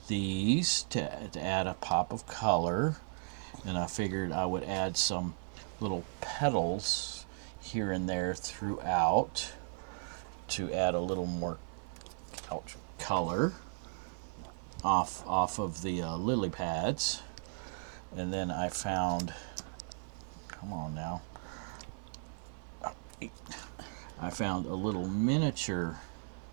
these to add a pop of color, and I figured I would add some little petals here and there throughout to add a little more color off of the lily pads. And then I found, come on now, I found a little miniature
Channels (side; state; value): left; silent; digital silence